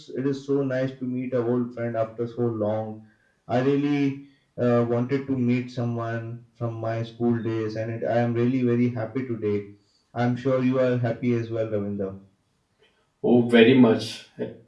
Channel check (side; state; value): both; identical; correlation 1.00